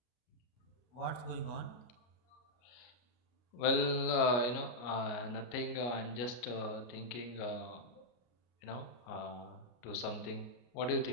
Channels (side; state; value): right; late; 33 ms